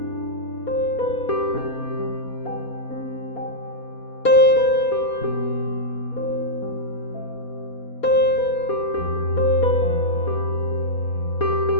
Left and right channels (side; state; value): right; late; 4.2 ms